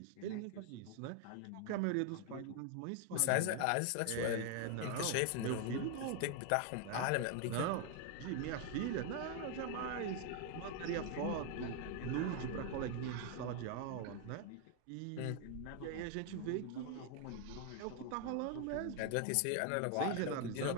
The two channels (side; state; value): both; different; correlation 0.00